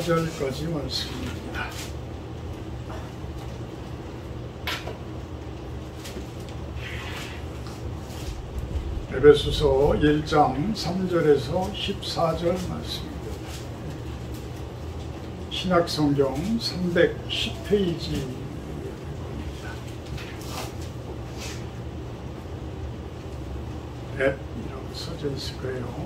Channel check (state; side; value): identical; both; correlation 1.00